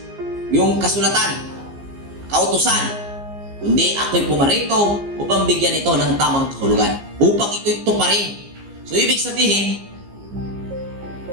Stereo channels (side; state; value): left; late; 15 ms